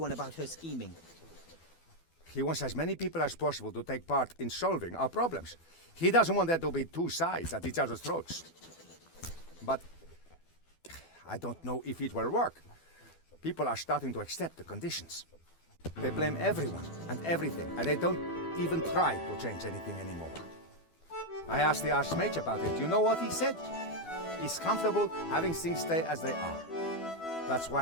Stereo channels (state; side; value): late; right; 12 ms